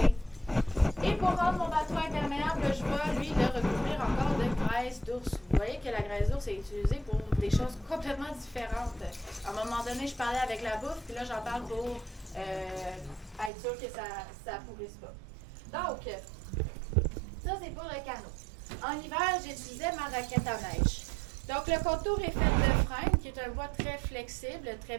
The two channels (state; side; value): drops out; left; at 13.5 s